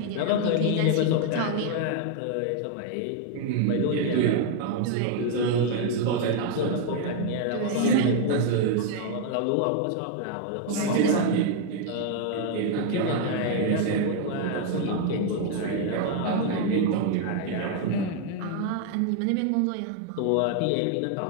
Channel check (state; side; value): different; both; correlation 0.00